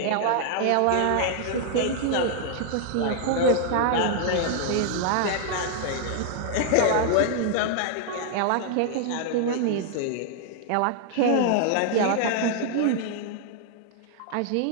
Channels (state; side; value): different; both; correlation 0.00